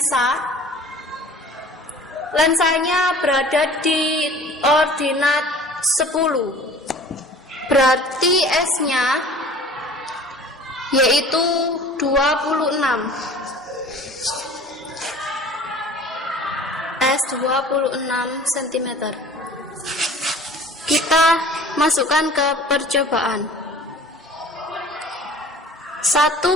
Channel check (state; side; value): normal; both; correlation 0.45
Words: Lensanya berada di ordinat 10. Berarti S-nya yaitu 26. S 26 cm. Kita masukkan ke percobaan.